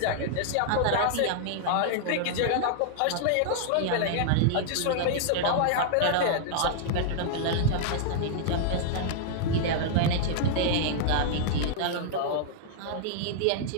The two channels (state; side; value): different; both; correlation -0.01